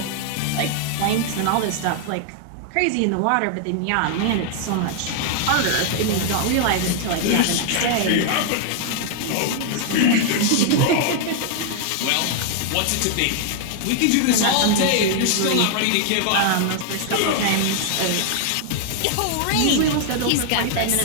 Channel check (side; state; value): both; different; correlation 0.00